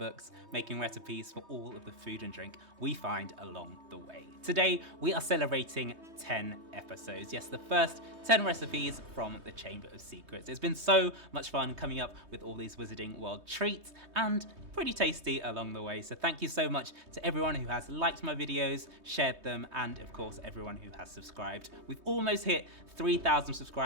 making recipes for all of the food and drink we find along the way. Today, we are celebrating 10 episodes. Yes, the first 10 recipes from the Chamber of Secrets. It's been so much fun coming up with all these Wizarding World treats and pretty tasty along the way. So thank you so much to everyone who has liked my videos, shared them, and of course, everyone who has subscribed. We've almost hit 3,000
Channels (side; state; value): left; late; 3.2 ms